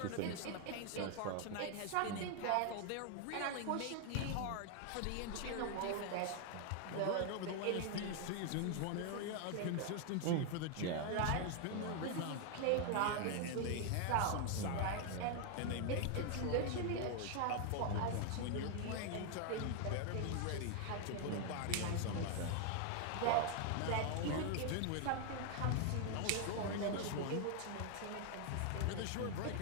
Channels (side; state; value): both; different; correlation 0.00